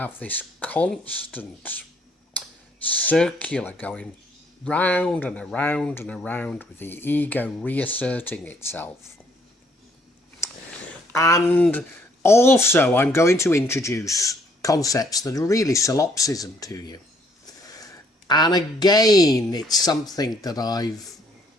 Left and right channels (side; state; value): both; normal; correlation 0.66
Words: this constant circular going round and around and around, with the ego reasserting itself. And also, I'm going to introduce concepts that are really solipsism to you. And again, it's something that I've